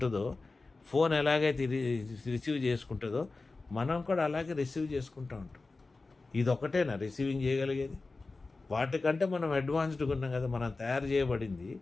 ఫోన్ ఎలాగైతే రిసీవ్ చేసుకుంటుందో, మనం కూడా అలాగే రిసీవ్ చేసుకుంటూ ఉంటాం. ఇది ఒకటేనా రిసీవింగ్ చేయగలిగేది? వాటికంటే మనం అడ్వాన్స్డ్గా ఉన్నాం కదా. మనం తయారు చేయబడింది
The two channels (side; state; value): right; quieter; 3.6 dB